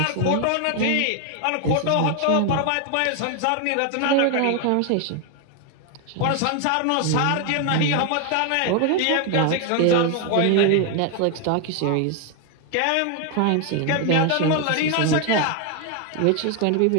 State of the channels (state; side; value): different; both; correlation 0.01